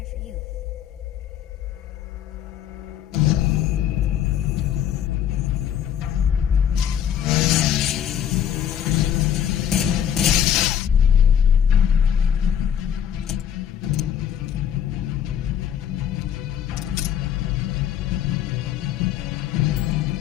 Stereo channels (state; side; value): quieter; right; 9.4 dB